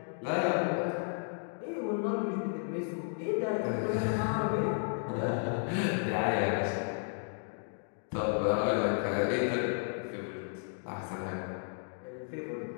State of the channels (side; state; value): right; silent; digital silence